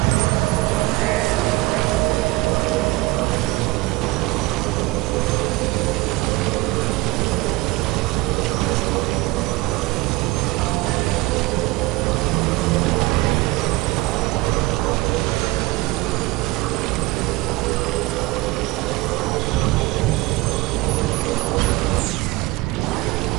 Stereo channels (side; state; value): left; quieter; 20.8 dB